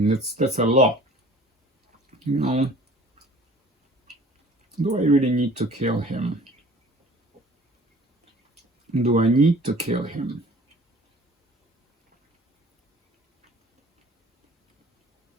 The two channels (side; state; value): both; normal; correlation 0.49